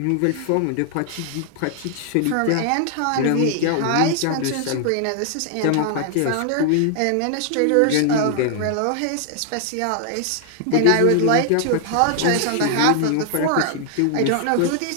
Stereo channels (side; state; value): both; different; correlation 0.00